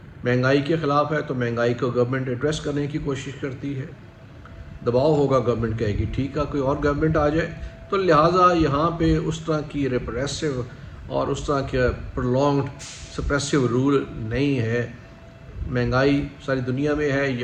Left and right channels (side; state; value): both; identical; correlation 1.00